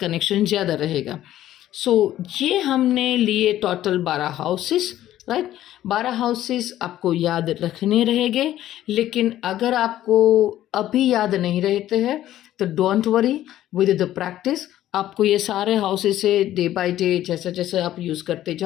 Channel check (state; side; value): quieter; right; 13.2 dB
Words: ज़्यादा रहेगा। सो ये हमने लिए टोटल 12 हाउसेस, राइट। 12 हाउसेस आपको याद रखने रहेंगे, लेकिन अगर आपको अभी याद नहीं रहते हैं तो don't worry, with the practice आपको ये सारे हाउसेस से डे बाय डे जैसे जैसे आप यूज़ करते